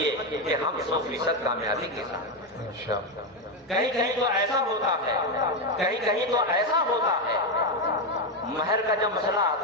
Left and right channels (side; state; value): both; normal; correlation 0.08